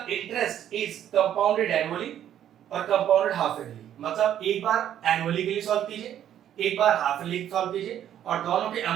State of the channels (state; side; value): quieter; left; 10.6 dB